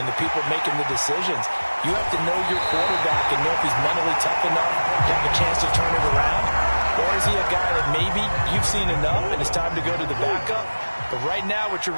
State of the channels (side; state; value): both; inverted; correlation -1.00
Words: the people making the decisions. You have to know your quarterback and know if he's mentally tough enough to have a chance to turn it around. Or is he a guy that maybe you've seen enough and it's time to go to the backup? But right now what you're